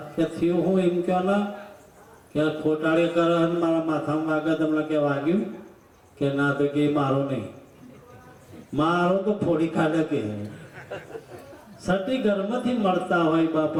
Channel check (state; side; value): identical; both; correlation 1.00